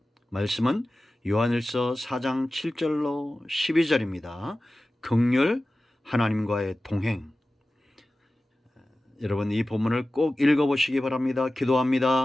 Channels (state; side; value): normal; both; correlation 0.96